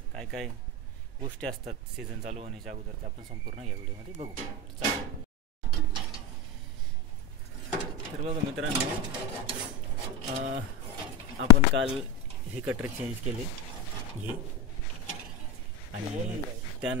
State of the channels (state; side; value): normal; both; correlation 0.20